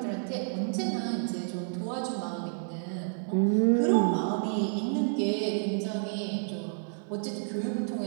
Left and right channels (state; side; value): silent; left; digital silence